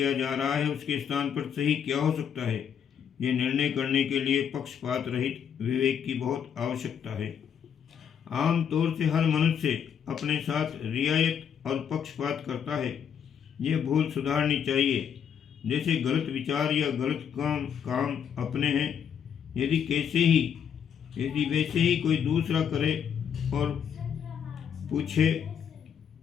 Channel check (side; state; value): right; quieter; 8.1 dB